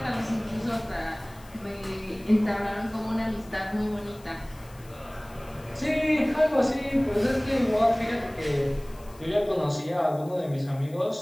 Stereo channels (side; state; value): left; noise; hiss, 24 dB below the sound